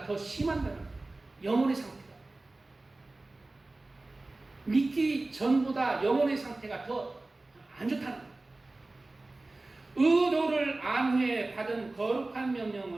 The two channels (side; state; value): left; quieter; 3.0 dB